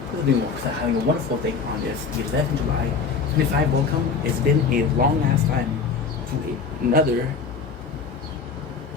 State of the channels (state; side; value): quieter; right; 5.4 dB